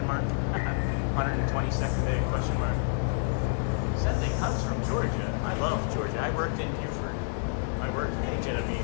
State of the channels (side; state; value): right; silent; 59 dB below the other